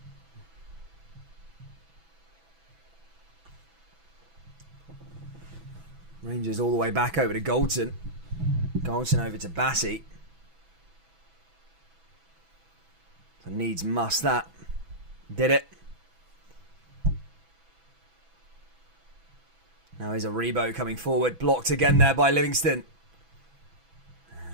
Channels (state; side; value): late; left; 6.1 ms